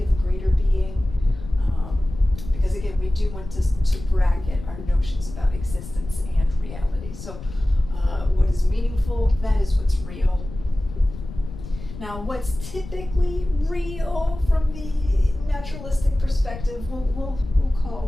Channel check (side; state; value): left; noise; rumble, 12 dB below the sound